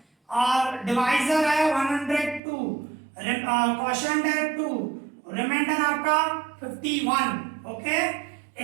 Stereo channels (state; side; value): drops out; left; at 2.4 s